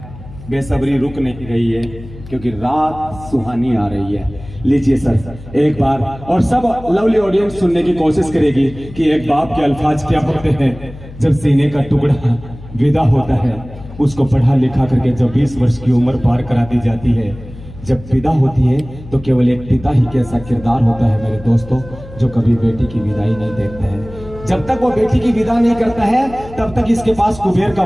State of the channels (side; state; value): left; noise; hum, 16 dB below the sound